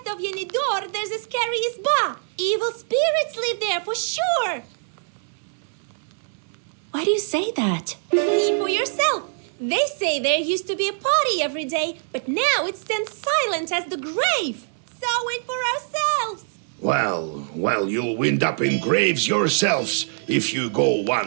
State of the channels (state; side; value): silent; left; 63 dB below the other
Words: of Yenidor, there's a scary isba. Evil spirits live there for sure! Why do you say that? See for yourself. They say there used to be a party every day, but now it stands silent as the grave. Saw it for ourselves. Well, you'll wind up in graves yourselves if you go